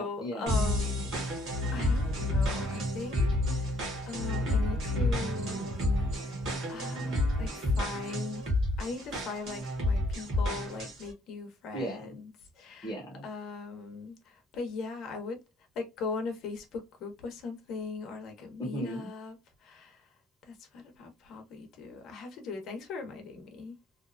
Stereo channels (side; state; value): both; normal; correlation 0.65